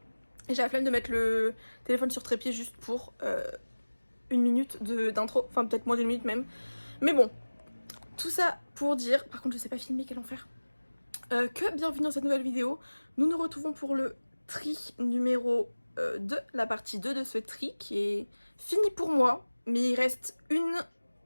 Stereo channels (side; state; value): both; inverted; correlation -1.00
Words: et j'ai la flemme de mettre le téléphone sur trépied juste pour une minute d'intro, enfin peut-être moins d'une minute même. Mais bon, tout ça pour dire, par contre je sais pas filmer, quel enfer, que bienvenue dans cette nouvelle vidéo. Nous nous retrouvons pour le tri numéro 2, la partie 2 de ce tri qui est fini pour moi, mais il reste une...